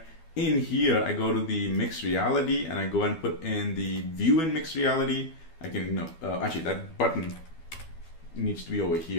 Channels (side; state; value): right; late; 12 ms